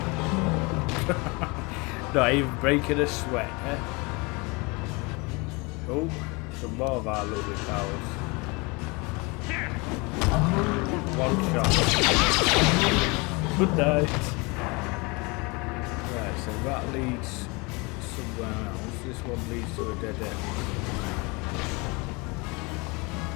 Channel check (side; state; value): right; quieter; 27.5 dB